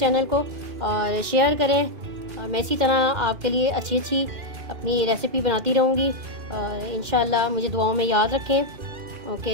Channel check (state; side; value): late; left; 2.1 ms